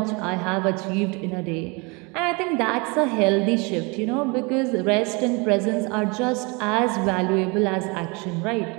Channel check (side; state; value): left; quieter; 29.1 dB